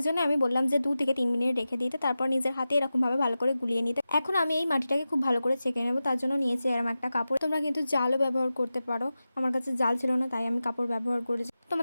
জন্য আমি বললাম যে 2 থেকে 3 মিনিট রেখে দিতে, তারপর নিজের হাতে এরকমভাবে ভালো করে গুলিয়ে নিতে। এখন আমি এই মাটিটাকে খুব ভালো করে ছেঁকে নেবো, তার জন্য নিয়েছি এরকম একটা কাপড়। তোমরা কিন্তু জালও ব্যবহার করতে পারো, আমার কাছে জাল ছিল না তাই আমি কাপড় ব্যবহার করেছি।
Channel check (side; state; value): both; inverted; correlation -0.94